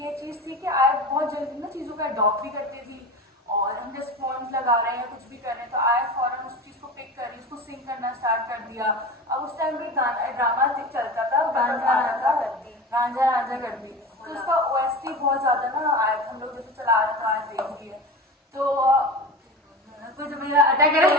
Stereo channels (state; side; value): normal; both; correlation 0.30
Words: चीज थी कि आयत बहुत जल्दी ना चीजों का अडॉप्ट भी करती थी और हम जैसे फोन लगा रहे हैं कुछ भी कर रहे हैं तो आयत फौरन उस चीज को पिक करी, उसको सिंग करना स्टार्ट कर दिया। अब उस टाइम भी ड्रामा चलता था, गांजा रांझा कर दी। गांजा रांझा कर दी। तो उसका OST बहुत ज्यादा ना आयत हम लोग जैसे चला रहे तो आयत देख लिया तो कुछ मेरा अटैक